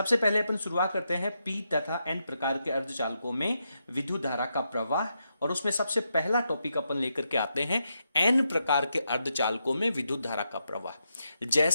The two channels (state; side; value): inverted; both; correlation -0.83